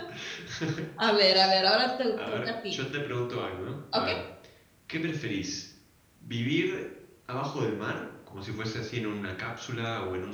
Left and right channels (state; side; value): identical; both; correlation 1.00